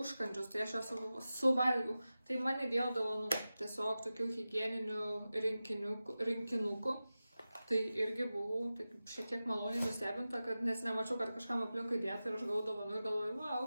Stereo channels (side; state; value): both; inverted; correlation -0.95